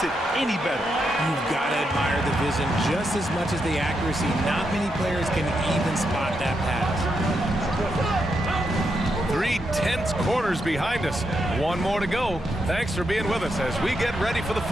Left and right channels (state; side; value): normal; both; correlation 0.82